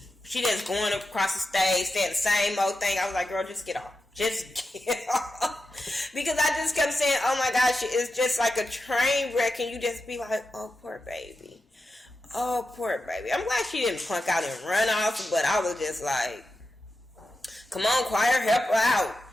just going across the stage saying the same old thing. I was like, girl, just get off. Just get off. Because I just kept saying, oh my gosh, it's just like a train wreck, and you just be like, oh, poor baby. Oh, poor baby. I'm glad she didn't punk out and run off, but I was just like, come on, choir, help her out.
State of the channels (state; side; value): normal; both; correlation 0.90